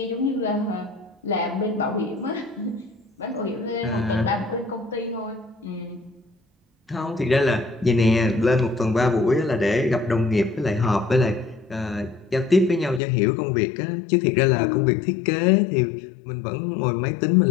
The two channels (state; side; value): drops out; right; at 13.0 s